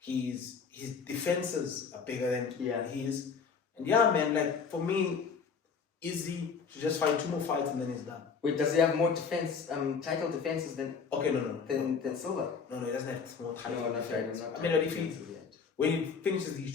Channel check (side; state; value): right; quieter; 5.8 dB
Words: defenses are bigger than his. And for me, Izzy should just fight 2 more fights and then he's done. Wait, does he have more title defenses than than Silva? No, he doesn't have more title defenses. But when he finishes these